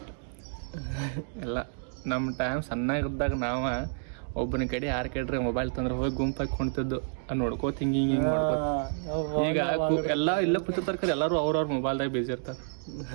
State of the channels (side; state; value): left; silent; digital silence